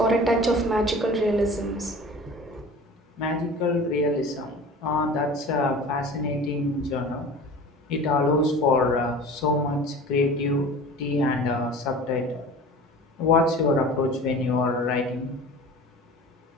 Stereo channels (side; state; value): both; normal; correlation 0.39